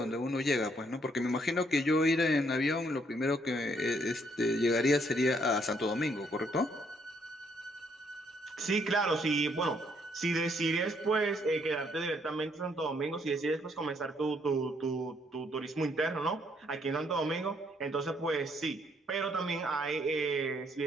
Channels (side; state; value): both; normal; correlation 0.69